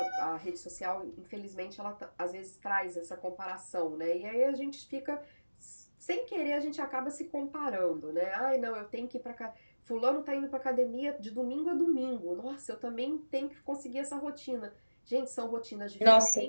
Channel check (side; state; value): both; inverted; correlation -1.00